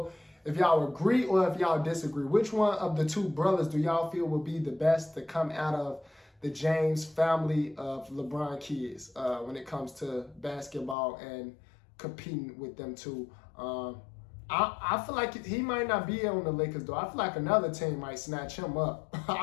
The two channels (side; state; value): right; drops out; at 11.0 s